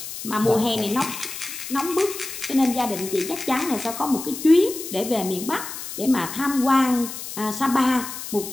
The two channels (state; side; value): noise; left; hiss, 9 dB below the sound